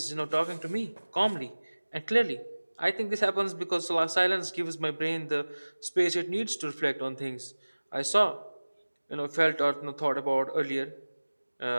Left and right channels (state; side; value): inverted; both; correlation -1.00